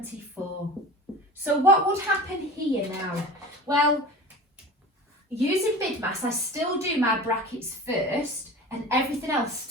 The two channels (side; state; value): both; normal; correlation 0.36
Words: So what would happen here now? Well, using BIDMAS, I still do my brackets first and everything else